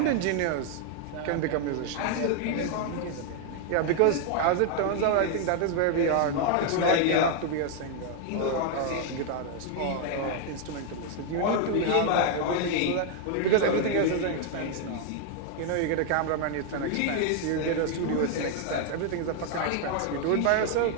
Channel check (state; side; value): different; both; correlation 0.00